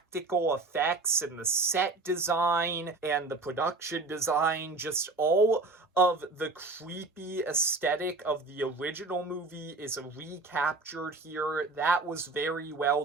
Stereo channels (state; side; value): quieter; left; 3.6 dB